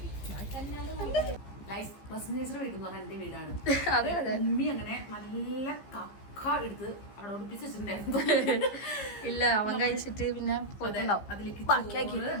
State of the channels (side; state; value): right; late; 15 ms